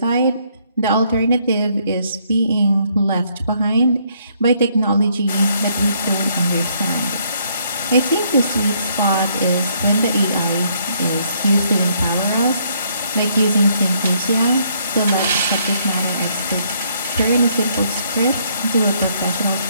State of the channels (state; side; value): inverted; both; correlation -0.69